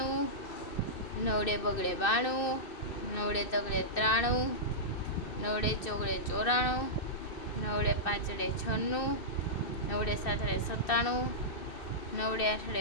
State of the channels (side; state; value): right; late; 2.6 ms